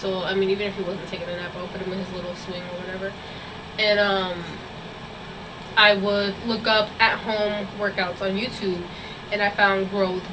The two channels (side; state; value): both; identical; correlation 1.00